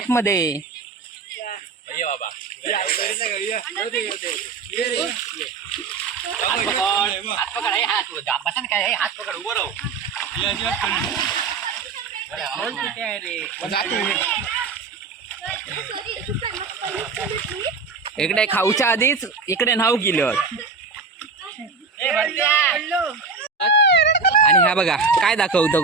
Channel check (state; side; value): quieter; left; 4.6 dB